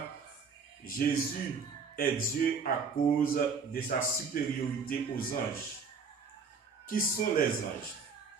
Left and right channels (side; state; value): left; quieter; 5.2 dB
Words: Jésus est Dieu à cause de sa supériorité aux anges. Qui sont les anges?